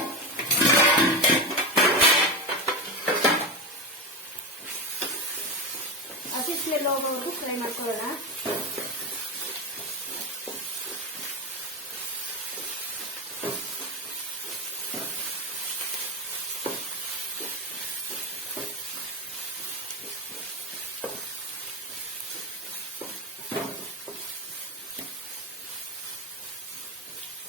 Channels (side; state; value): both; normal; correlation 0.17